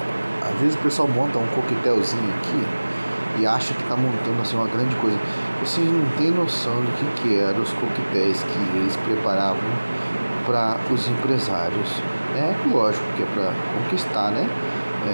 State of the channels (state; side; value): inverted; both; correlation -1.00